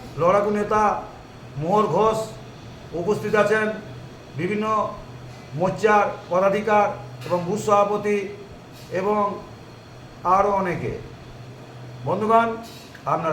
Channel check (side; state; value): both; identical; correlation 1.00